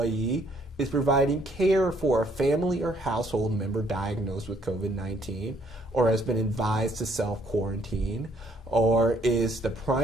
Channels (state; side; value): normal; both; correlation 0.66